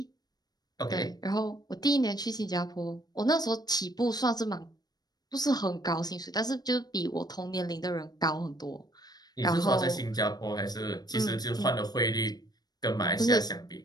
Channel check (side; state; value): right; late; 0.19 ms